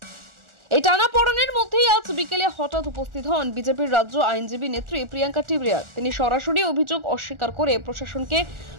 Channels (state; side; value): late; left; 1.4 ms